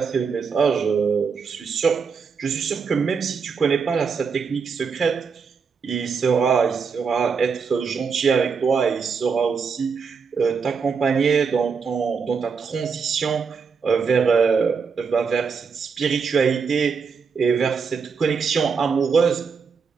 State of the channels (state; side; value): quieter; left; 5.7 dB